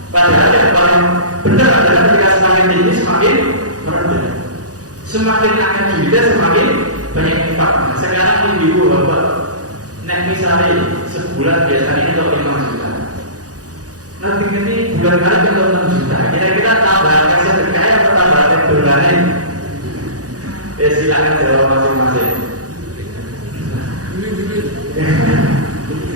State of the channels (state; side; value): late; left; 0.67 ms